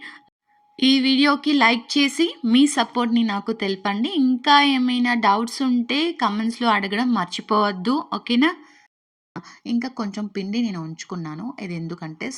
ఈ వీడియోకి లైక్ చేసి మీ సపోర్ట్‌ని నాకు తెలపండి. ఇంకా ఏమైనా డౌట్స్ ఉంటే కామెంట్స్‌లో అడగడం మర్చిపోవద్దు. ఓకేనా? ఇంకా కొంచెం పిండి నేను ఉంచుకున్నాను. ఇది ఎందుకంటే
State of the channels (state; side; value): identical; both; correlation 1.00